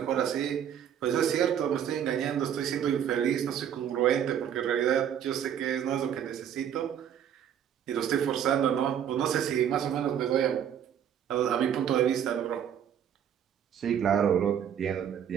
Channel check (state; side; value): quieter; left; 9.2 dB